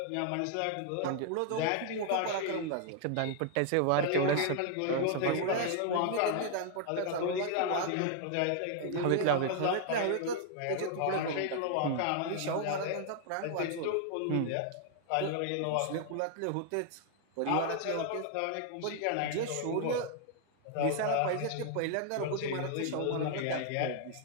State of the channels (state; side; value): different; both; correlation 0.00